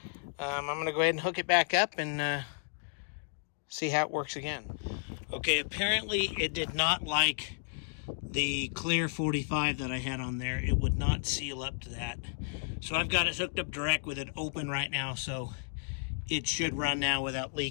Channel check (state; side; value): silent; right; digital silence